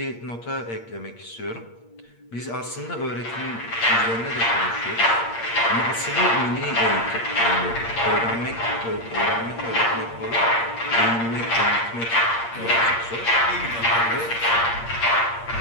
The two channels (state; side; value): late; right; 8.6 ms